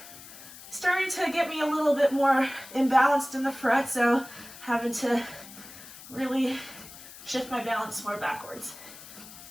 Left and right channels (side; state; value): left; noise; hiss, 16 dB below the sound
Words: starting to get me a little bit more imbalanced in the front, so having to really shift my balance more backwards.